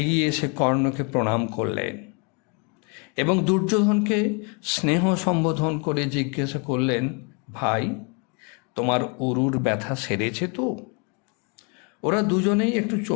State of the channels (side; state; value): right; quieter; 34.7 dB